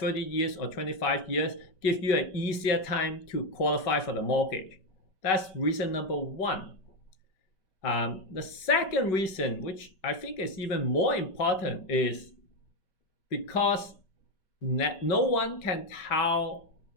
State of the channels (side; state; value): right; late; 5.3 ms